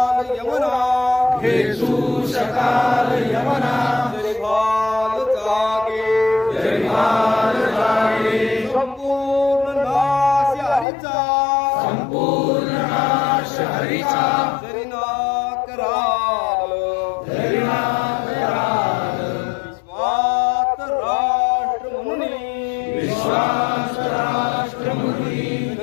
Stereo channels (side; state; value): right; drops out; at 10.9 s